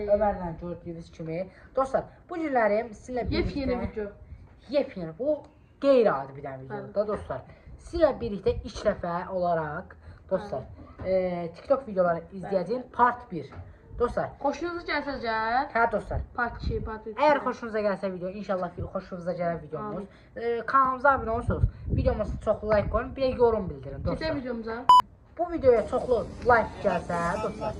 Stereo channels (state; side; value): identical; both; correlation 1.00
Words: Ömərlə gördüyünüz kimi. Dostlar, bu günləri sizinlə birlikdə Yepyeni video. Yepyeni, bu qeyri-adi bir dənə videodur da dostlar. Sizinlə birlikdə ilk dəfə olaraq dostlar, TikTok videoları izləyəcəyim part 1. Dostlar, Xoşunuza gəlsəcə, hə dostlar. part 2, part 3. Əgər xoşunuza gəlsə video, inşallah xoşunuza gələr videomuz. Kanalımıza abunə olursunuz. Videomuza çoxlu like qoyun, bir də yorum bildirin dostlar. Keçək videomuza. Bu videoya çoxlu like gəlsə dostlar,